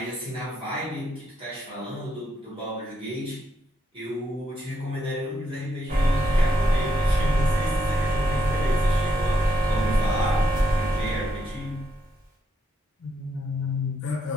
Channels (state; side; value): normal; both; correlation 0.78